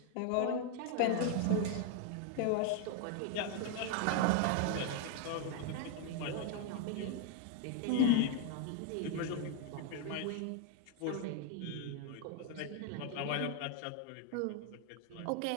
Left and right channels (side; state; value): both; different; correlation 0.00